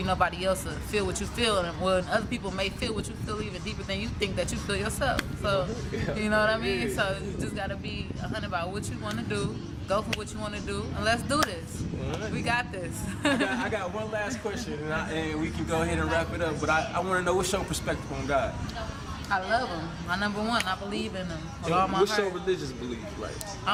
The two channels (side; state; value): both; identical; correlation 1.00